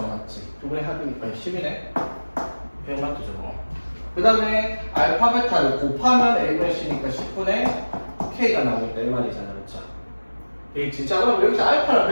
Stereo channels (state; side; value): inverted; both; correlation -1.00